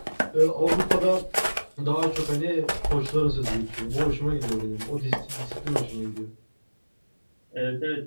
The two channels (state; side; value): inverted; both; correlation -1.00